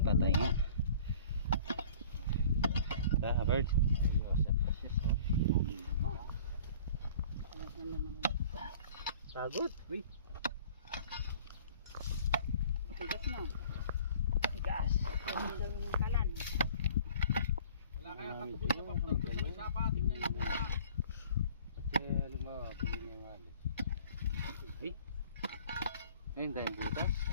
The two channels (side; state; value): both; inverted; correlation -0.48